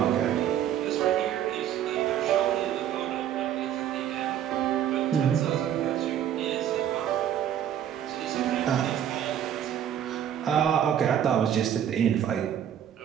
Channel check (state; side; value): quieter; left; 10.2 dB